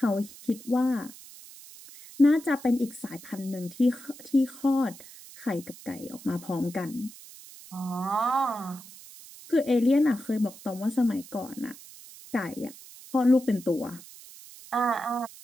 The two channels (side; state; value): right; noise; hiss, 18 dB below the sound